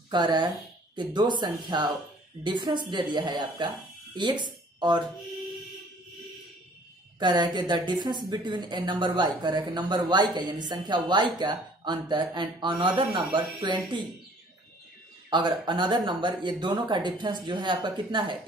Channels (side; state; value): both; normal; correlation 0.55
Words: कह रहा है कि दो संख्या डिफरेंस दे दिया है आपका x, और कह रहा है कि the difference between A number y, कह रहा है कि नंबर y का यानी संख्या y का अंतर एंड अनदर नंबर 20, अगर अनदर नंबर, ये दोनों का डिफरेंस जो है आपका कितना है,